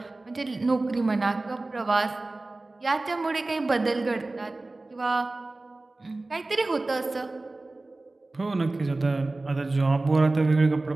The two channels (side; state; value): left; quieter; 3.1 dB